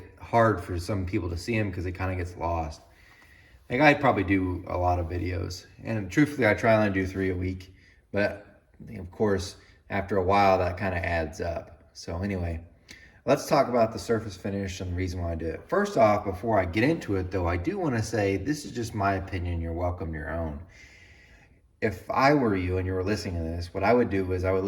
hard for some people to see them because it kind of gets lost. Like, I probably do a lot of videos, and truthfully, I try and do 3 a week, but of course, after a while, that kind of adds up. So anyway, let's talk about the surface finish and the reason why I do it. First off, before I get into it though, I do want to say this is just my opinion. You're welcome to your own. If I were you and you were listening to this, what I would do is I would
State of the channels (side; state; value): both; identical; correlation 1.00